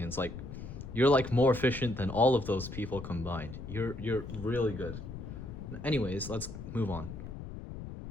Like, you're like more efficient than all of those people combined. You're really good. Anyways, let's move on.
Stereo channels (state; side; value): noise; left; rumble, 9 dB below the sound